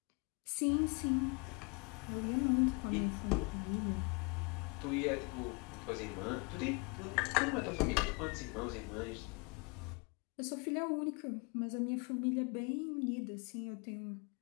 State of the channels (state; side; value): quieter; right; 29.7 dB